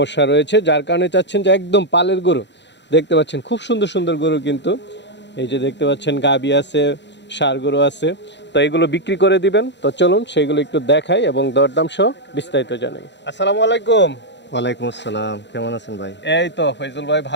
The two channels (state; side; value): late; right; 0.52 ms